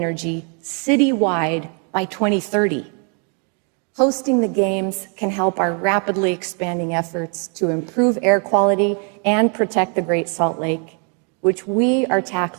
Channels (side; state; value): left; quieter; 38.8 dB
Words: citywide by 2030. Hosting the Games can help our rapidly expanding efforts to improve air quality and protect the Great Salt Lake, which we are